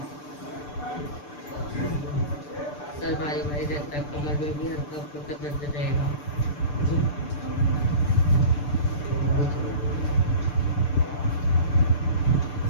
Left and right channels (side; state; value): right; late; 6.8 ms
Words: सर भारी भारी रहता है, कमर में भी हल्का फुल्का दर्द रहेगा।